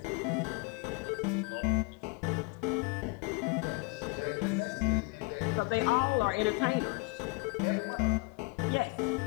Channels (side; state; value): right; quieter; 27.8 dB